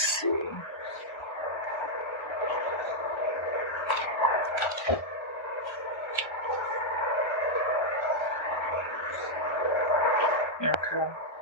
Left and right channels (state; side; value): late; right; 1.3 ms